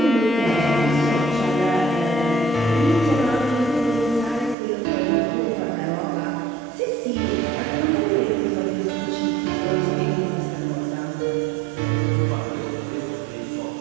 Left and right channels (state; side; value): drops out; left; at 4.5 s